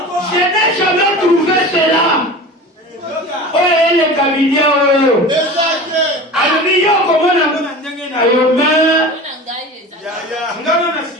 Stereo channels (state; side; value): normal; both; correlation 0.34